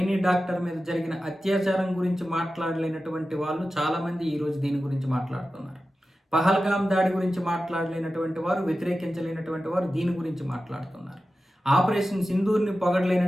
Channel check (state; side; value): normal; both; correlation 0.93